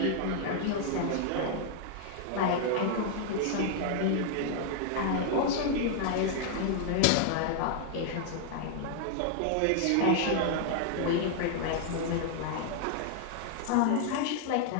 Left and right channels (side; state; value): both; different; correlation 0.00